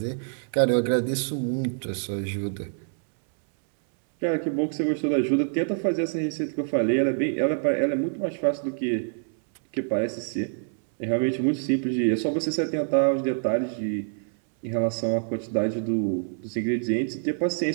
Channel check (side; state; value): left; silent; 61 dB below the other